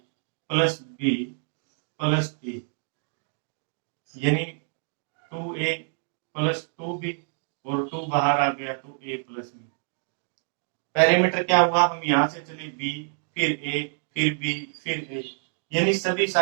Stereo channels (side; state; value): left; silent; 60 dB below the other